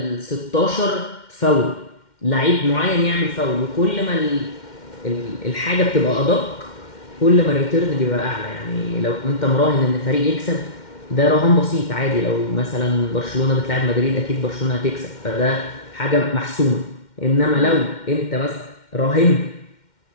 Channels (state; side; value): late; right; 2.1 ms